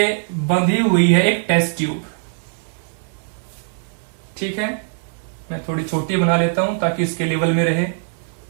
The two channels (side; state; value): left; silent; digital silence